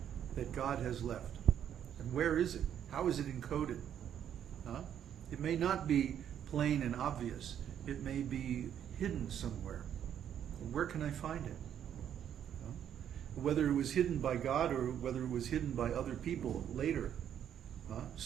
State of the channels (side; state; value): left; quieter; 9.6 dB